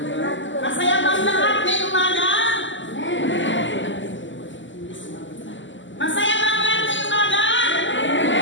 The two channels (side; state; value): right; late; 0.55 ms